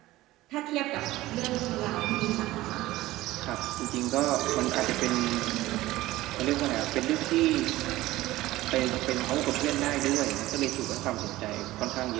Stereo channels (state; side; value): quieter; left; 17.2 dB